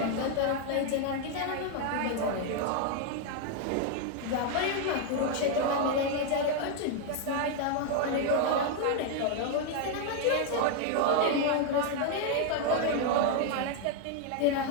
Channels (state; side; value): different; both; correlation 0.00